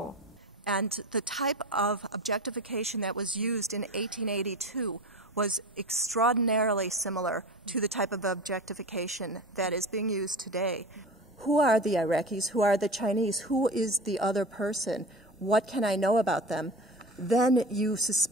And the type of objectification that was used in 1882 was extraordinarily similar to the type of objectification that is being used today. Who are the Iraqis? Who are the Chinese? Who is the other person? What can I know about them? Then you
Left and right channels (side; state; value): both; normal; correlation 0.32